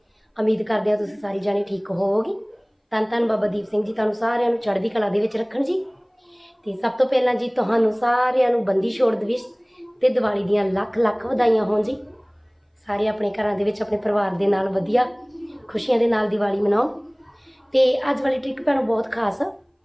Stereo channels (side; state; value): both; identical; correlation 1.00